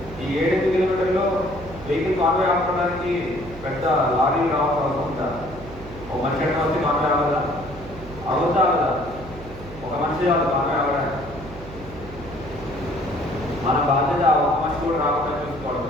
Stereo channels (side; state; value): right; noise; hum, 15 dB below the sound